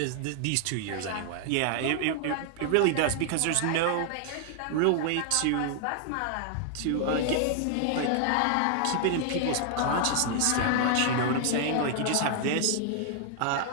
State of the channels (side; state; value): both; different; correlation 0.00